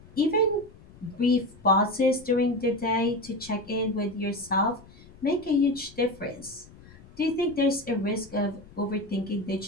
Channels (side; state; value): left; noise; rumble, 22 dB below the sound